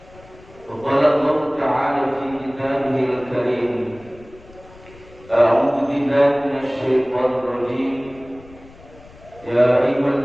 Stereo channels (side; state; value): left; noise; rumble, 23 dB below the sound